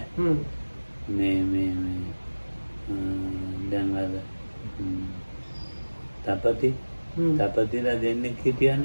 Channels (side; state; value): both; inverted; correlation -1.00